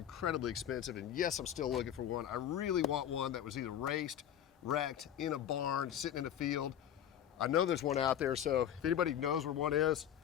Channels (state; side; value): quieter; right; 10.1 dB